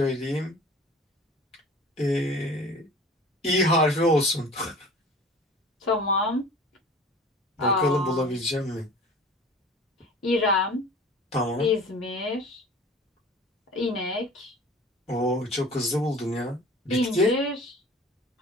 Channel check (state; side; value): normal; both; correlation 0.43